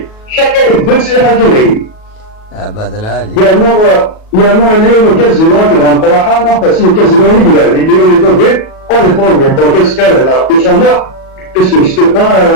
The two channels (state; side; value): late; right; 37 ms